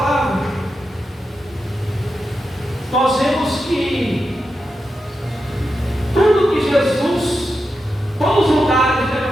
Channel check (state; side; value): normal; both; correlation 0.88